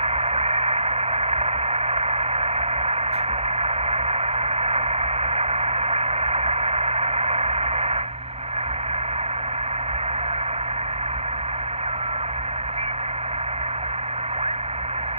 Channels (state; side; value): late; left; 0.30 ms